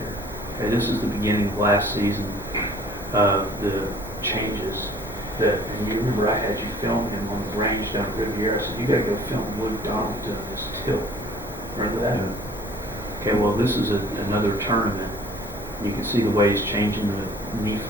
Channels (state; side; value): normal; both; correlation 0.52